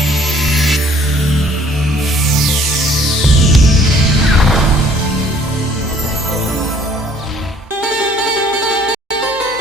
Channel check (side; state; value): both; normal; correlation 0.58